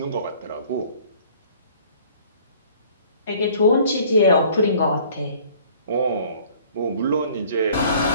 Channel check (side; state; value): both; inverted; correlation -0.54